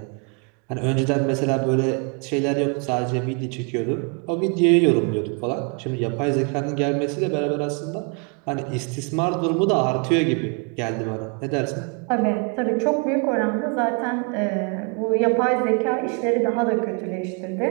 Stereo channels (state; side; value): quieter; left; 35.2 dB